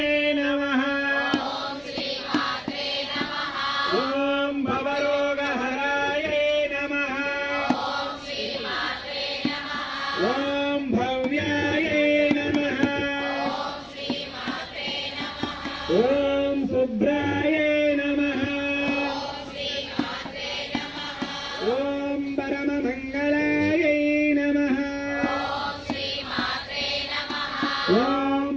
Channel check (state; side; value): identical; both; correlation 1.00